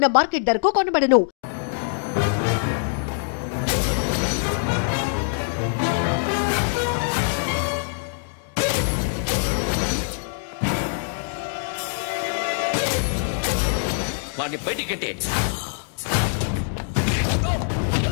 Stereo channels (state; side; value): silent; right; digital silence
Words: మార్కెట్ ధరకు కొనబడను. వాడిని బయటికి